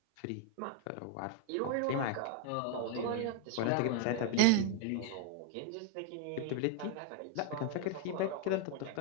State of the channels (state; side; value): different; both; correlation 0.00